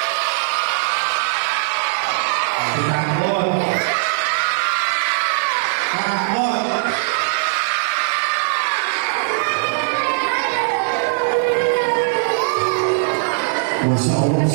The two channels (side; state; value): left; silent; 66 dB below the other